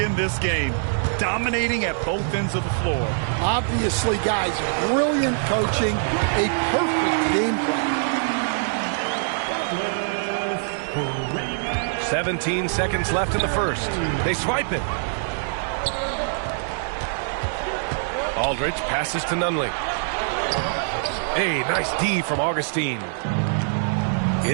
this game. Dominating at both ends of the floor. Obviously, guys, brilliant coaching, a perfect game plan. 17 seconds left in the first. They swipe it. Aldridge passes to Nunley. Hey, nice D from Augustine.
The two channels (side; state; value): left; silent; digital silence